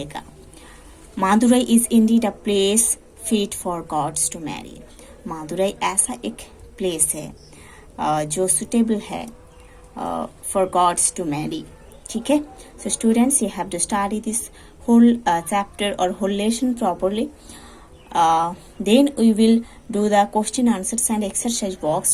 Madurai is indeed a place fit for gods to marry. Madurai ऐसा एक प्लेस है जो सुटेबल है फॉर गॉड्स टू मैरी। ठीक है, so students, you have to study this whole chapter or whole lesson properly. Then we will do the question answers and exercise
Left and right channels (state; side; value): identical; both; correlation 1.00